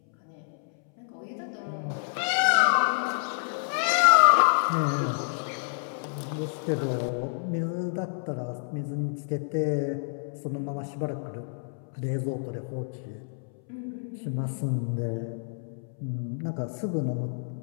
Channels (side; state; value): right; silent; 59 dB below the other